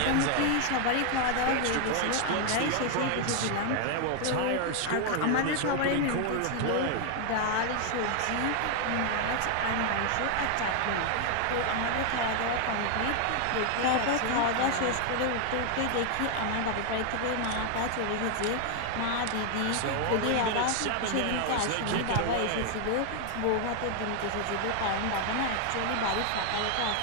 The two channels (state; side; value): different; both; correlation 0.00